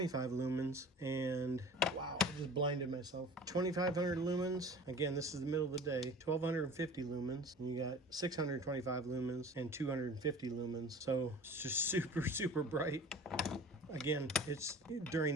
lumens. And wow, I just blinded myself. 2500 lumens. Again, this is the middle of the day. 1250 lumens. And you got 625 lumens and 250 lumens. So it's just super bright. Again, it's during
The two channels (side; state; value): both; normal; correlation 0.41